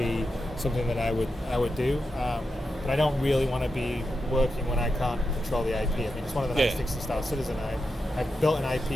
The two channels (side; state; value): both; normal; correlation 0.88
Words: something that I would do. But I don't really want to be working when I can't control the IP. I mean, it's one of the nice things to Star Citizen. I built an